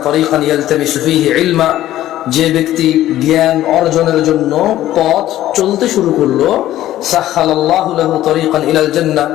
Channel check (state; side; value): quieter; right; 13.8 dB